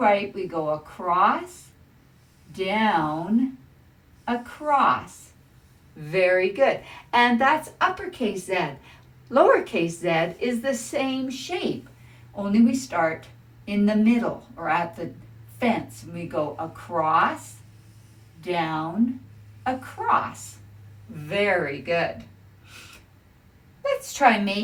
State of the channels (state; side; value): identical; both; correlation 1.00